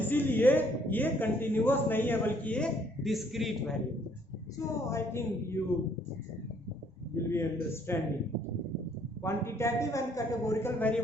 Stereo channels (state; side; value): normal; both; correlation 0.64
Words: ये कंटिन्यूअस नहीं है बल्कि ये डिस्क्रीट वेरिएबल है। So I think you will be understanding quantitative and categorical